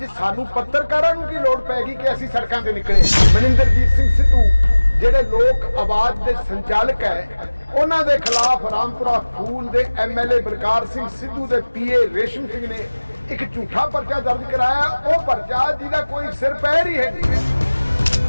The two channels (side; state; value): both; inverted; correlation -1.00